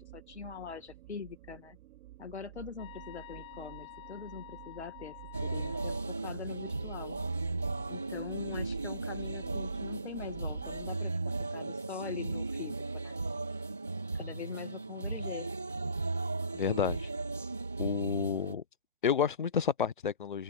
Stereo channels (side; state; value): both; inverted; correlation -0.48